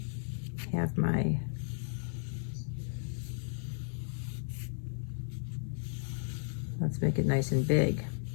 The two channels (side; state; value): right; silent; 55 dB below the other